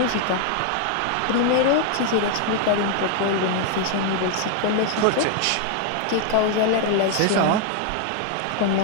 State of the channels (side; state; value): both; different; correlation 0.00